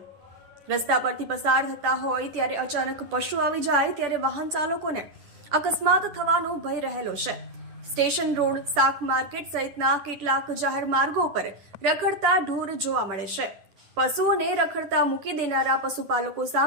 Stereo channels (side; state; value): left; late; 10 ms